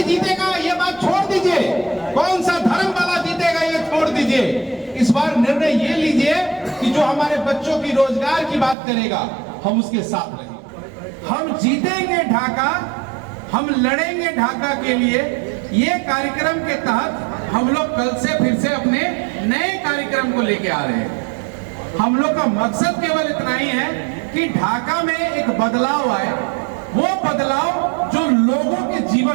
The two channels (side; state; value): left; drops out; at 8.8 s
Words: जीतेगा ये बात छोड़ दीजिए, कौन सा धर्म वाला जीतेगा ये छोड़ दीजिए। इस बार निर्णय ये लीजिए कि जो हमारे बच्चों की रोजगार की बात करेगा हम उसके साथ रहेंगे। हम जीतेंगे ढाका, हम लड़ेंगे ढाका के लिए। ये कार्यक्रम के तहत हम लोग कल से फिर से अपने नए कार्यक्रम को लेके आ रहे हैं। हम लोग का मकसद केवल इतना ही है कि ढाका में एक बदलाव आए, वो बदलाव जो लोगों के